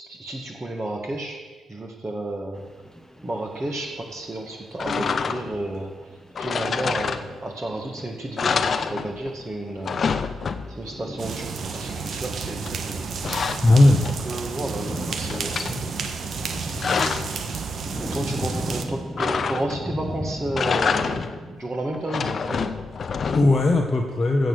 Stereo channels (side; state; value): both; normal; correlation 0.87